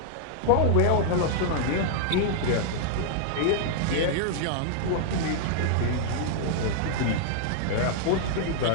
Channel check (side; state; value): both; different; correlation -0.01